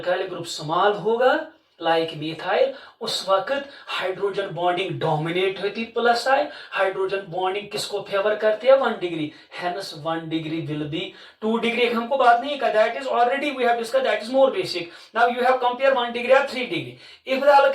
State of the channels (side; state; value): both; identical; correlation 1.00